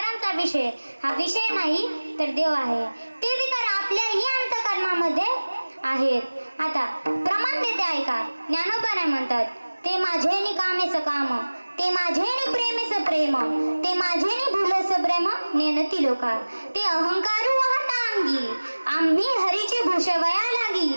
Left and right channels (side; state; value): both; inverted; correlation -1.00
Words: विषय हा विषय नाही तर देव आहे. ते विकार आपल्याही अंतकरणामध्ये आहेत. आता प्रमाण देते ऐका. ज्ञानोबा काय म्हणतात, ते माझेनी कामेच काम, ते माझेनी प्रेमेच प्रेम, ते माझेनी भुलस प्रेम नेनती लोका, ते अहंकारू वाहता अंगी, आम्ही हरीचे भूषवया लागी,